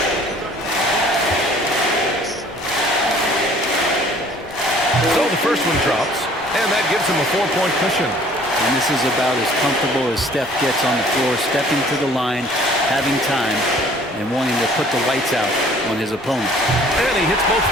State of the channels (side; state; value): both; normal; correlation 0.54